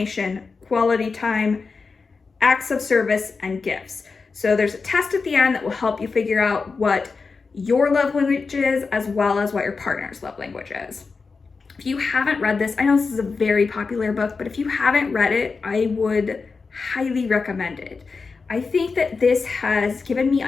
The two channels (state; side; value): quieter; right; 4.6 dB